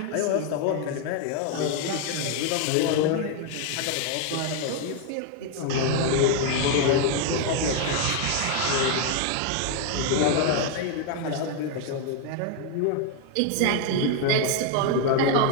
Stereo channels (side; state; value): both; different; correlation 0.00